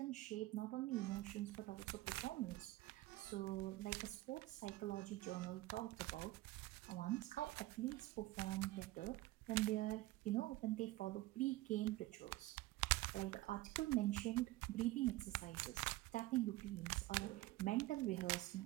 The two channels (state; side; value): quieter; left; 17.9 dB